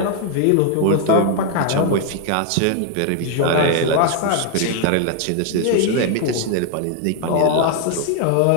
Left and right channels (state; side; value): different; both; correlation 0.00